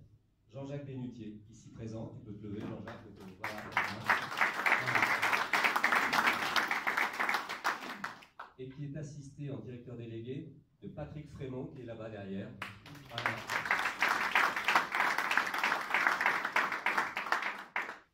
Jean-Jacques Bénutier, ici présent. Tu peux te lever, Jean-Jacques. Voilà. Et qui est assisté en directeur délégué de Patrick Frémont, qui est là-bas derrière. Voilà.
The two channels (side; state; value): both; identical; correlation 1.00